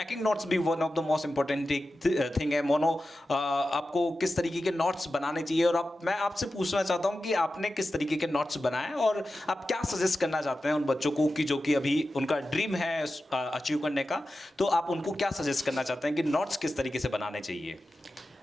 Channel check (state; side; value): normal; both; correlation 0.93